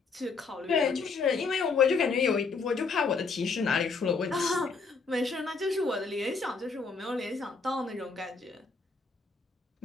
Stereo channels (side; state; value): right; quieter; 4.6 dB